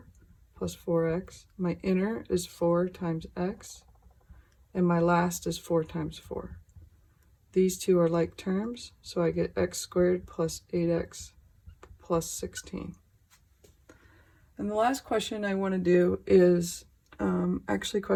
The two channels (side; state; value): both; identical; correlation 1.00